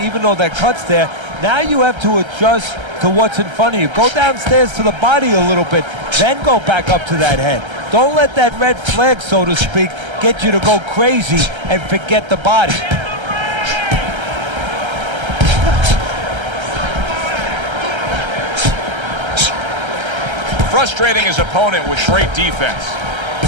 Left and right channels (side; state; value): left; late; 1.3 ms